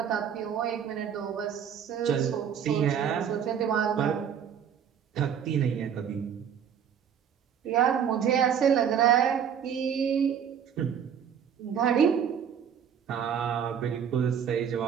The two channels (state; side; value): quieter; left; 8.3 dB